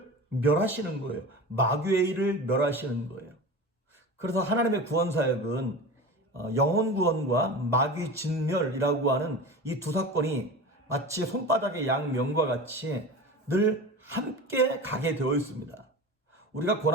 멸하시는 거예요. 마귀의 일을 멸하시는 거예요. 그래서 하나님의 구원 사역은 영혼 구원과 마귀 진멸이라고 하는 이 두 사건이 마치 손바닥의 양면과 같이 늘 함께 가게 되어 있습니다. 우리가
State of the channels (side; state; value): both; normal; correlation 0.31